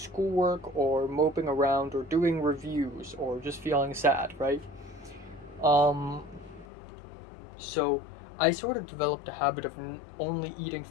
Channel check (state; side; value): drops out; right; at 6.7 s